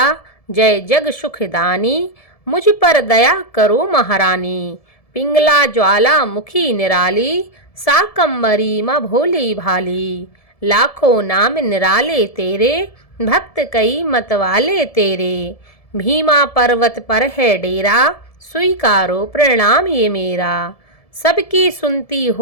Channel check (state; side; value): late; right; 1.7 ms